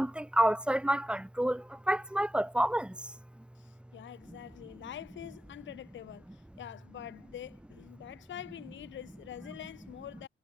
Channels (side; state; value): both; normal; correlation 0.90